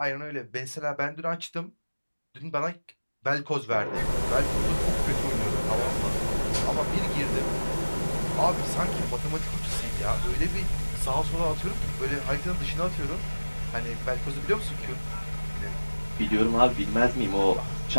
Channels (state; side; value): inverted; both; correlation -1.00